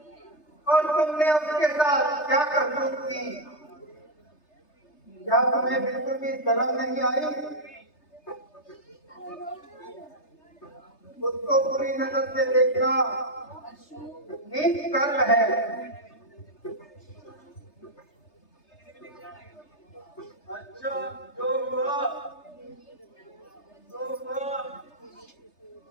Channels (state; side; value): late; right; 3.3 ms